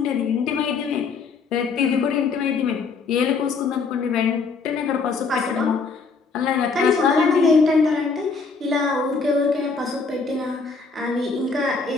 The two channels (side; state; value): right; quieter; 4.7 dB